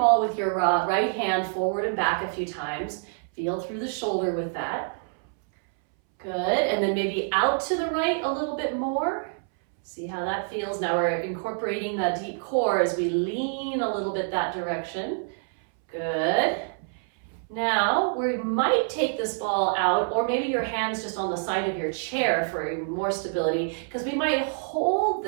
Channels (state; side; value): silent; left; 61 dB below the other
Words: with your right hand forward and back a few times. Feel through the shoulder with that. Good, and then maybe out to the right a little bit more. See how that feels. Now we're incorporating that deep core as we lean a little bit that direction. Good. Now we might take this ball out, or maybe your hands just on the side of your chair for more stability, because we might hold